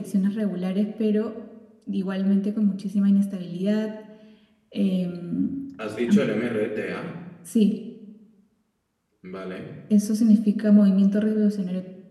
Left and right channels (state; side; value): identical; both; correlation 1.00